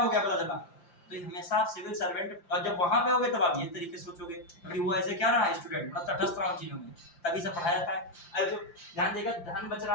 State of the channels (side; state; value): right; late; 5.8 ms